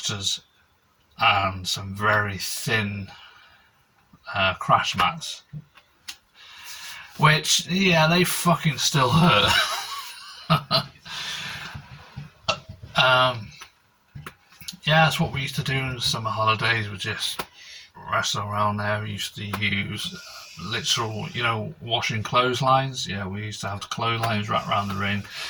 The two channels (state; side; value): identical; both; correlation 1.00